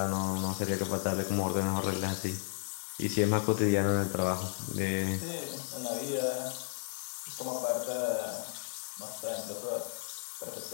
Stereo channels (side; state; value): right; silent; digital silence